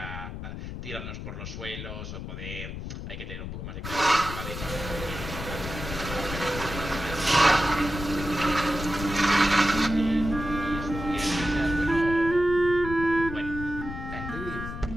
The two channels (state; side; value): noise; left; rumble, 8 dB below the sound